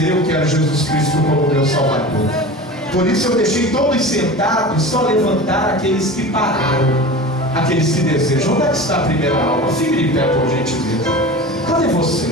eu quero Jesus Cristo como meu Salvador. Por isso eu deixei todos sentados, só levantar aqueles que pararam, aqueles que desejam. Onde é que está a primeira alma? Fique de pé, por gentileza. Cadê você?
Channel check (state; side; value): normal; both; correlation 0.34